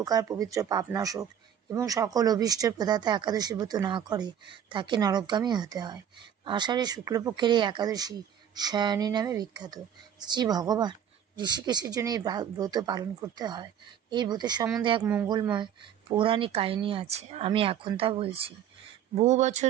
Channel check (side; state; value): left; quieter; 9.4 dB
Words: পবিত্র পাপনাশক এবং সকল অভীষ্টের প্রদাতা একাদশী ব্রত না করে, তাকে নরকগামী হতে হয়। আষাঢ়ে শুক্লপক্ষের এই একাদশী শয়নী নামে বিখ্যাত। শ্রী ভগবান ঋষিকেশের জন্য এই ব্রত পালন করতে হয়। এই ব্রতের সম্বন্ধে এক মঙ্গলময় পৌরাণিক কাহিনী আছে, আমি এখন তা বলছি। বহু বছর